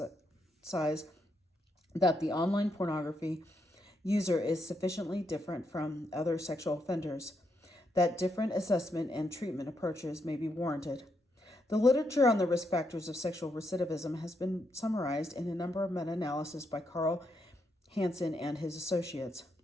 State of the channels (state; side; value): normal; both; correlation 0.79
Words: that the online pornography user is sufficiently different from other sexual offenders that different assessment and treatment approaches may be warranted. The literature on the risk factors of sexual recidivism has been summarized in a number of meta-analyses by Carl Hansen and his associates.